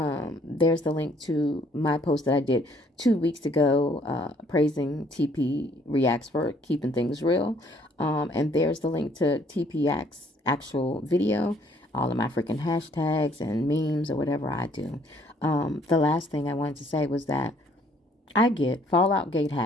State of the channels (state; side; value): normal; both; correlation 0.62